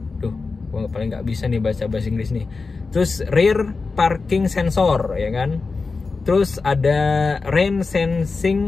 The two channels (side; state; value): right; quieter; 4.2 dB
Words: Duh, gua paling nggak bisa nih baca bahasa Inggris nih. Terus rear parking sensor ya kan. Terus ada rain